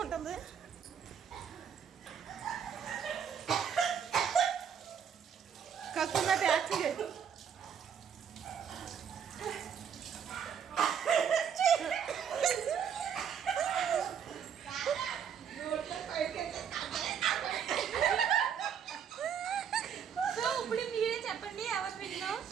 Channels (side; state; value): left; quieter; 7.9 dB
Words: కక్కున్నట్టు యాక్ట్ చేయి. ఇప్పుడు మీరే చెప్పండి ఎవరు విన్నా?